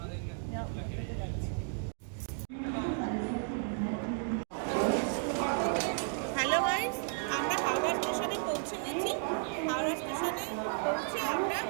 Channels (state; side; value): silent; left; 55 dB below the other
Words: মেট্রোতে যাচ্ছি। হ্যালো গাইস, আমরা হাওড়া স্টেশনে পৌঁছে গেছি। হাওড়া স্টেশনে পৌঁছে আমরা